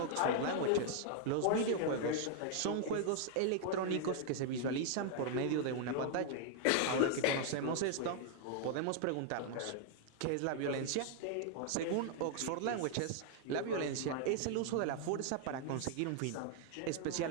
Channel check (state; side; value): different; both; correlation -0.01